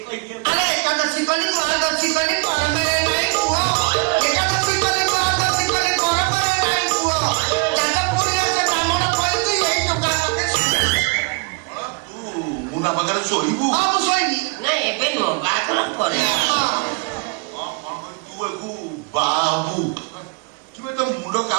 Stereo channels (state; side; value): quieter; left; 30.4 dB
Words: କହିଏ ଆରେ ଏକାଦଶୀ କଲି ଦ୍ୱାଦଶୀ କଲି ପରମରେ ନାଇଁ କୁହ ଏକାଦଶୀ କଲି ଦ୍ୱାଦଶୀ କଲି ପରମରେ ନାଇଁ କୁହ ଯାଜପୁରରେ ସେ ବ୍ରାହ୍ମଣ କହିଛି ଏଇ ଟୋକା ପାଖେ ତୁ ମୁନା ପାଖରେ ଶୋଇବୁ ହଁ ମୁଁ ଶୋଇବି ନା ଏବେ ନୁହଁ ବାହାଘର ପରେ ତୁ ଏକୁ ବାବୁ ତୁମେ ତ ମୁଣ୍ଡ